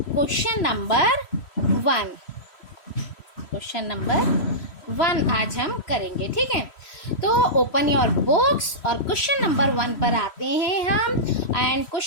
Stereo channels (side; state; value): right; late; 3.1 ms